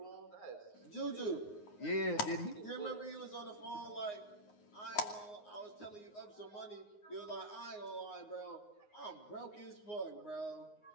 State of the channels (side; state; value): right; late; 9.6 ms